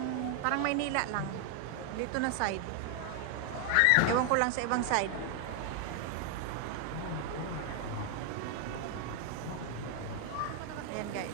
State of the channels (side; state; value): both; different; correlation 0.00